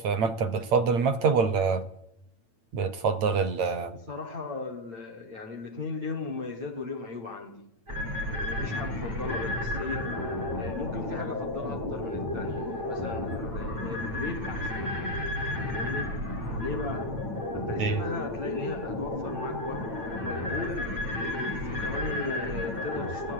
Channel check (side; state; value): left; late; 8.9 ms